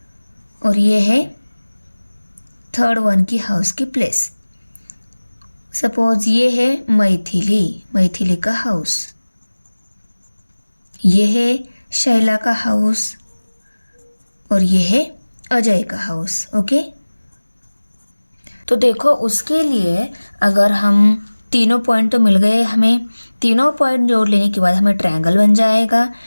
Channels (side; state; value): both; inverted; correlation -1.00